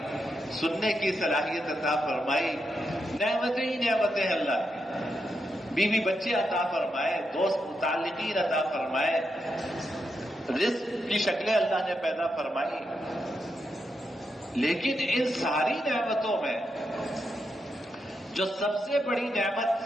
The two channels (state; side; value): normal; both; correlation 0.84